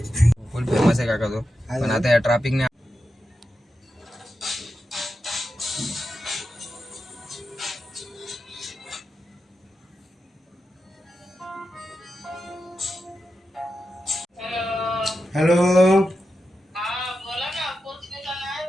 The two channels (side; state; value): both; normal; correlation 0.89